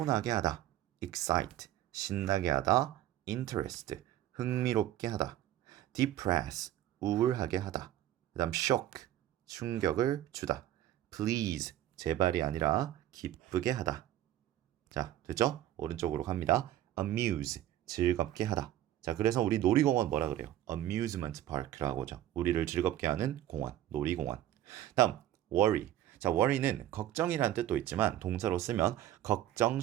하다. excite 신나게 하다. interest 흥미롭게 하다. depress 우울하게 하다. 그다음 shock 충격을 주다. please 제발이 아니라 기쁘게 하다. 자, 됐죠? 오른쪽으로 갑니다. amuse 즐겁게 하다. 자, 그래서 우리 놀이공원 뭐라 그래요? amusement park라고 하죠. 우리를 즐겁게 하는 공원, 놀이공원. 다음 worry. 자, worry는 걱정이라는 뜻도 있지만 동사로 쓰면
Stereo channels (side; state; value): left; quieter; 13.0 dB